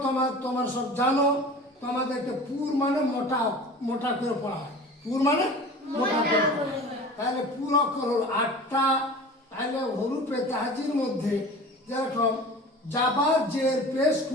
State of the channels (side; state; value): both; normal; correlation 0.38